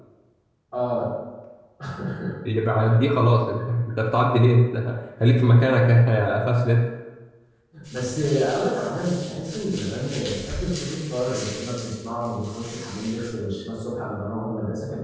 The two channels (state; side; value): identical; both; correlation 1.00